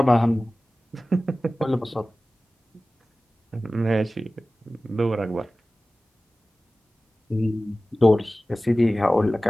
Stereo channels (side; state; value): both; normal; correlation 0.97